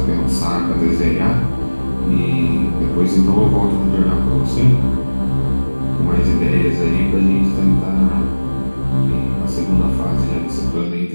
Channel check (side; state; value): both; inverted; correlation -1.00